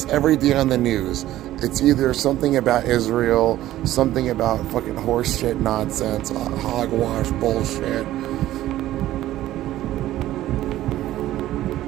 every day on the news, it's either something about Israel, something about fucking horse shit nonsense, hogwash bullshit.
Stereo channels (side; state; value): left; quieter; 14.3 dB